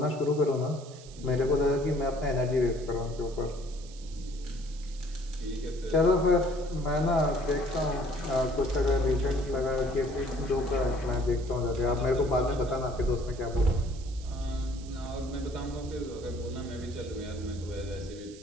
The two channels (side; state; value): right; noise; hiss, 20 dB below the sound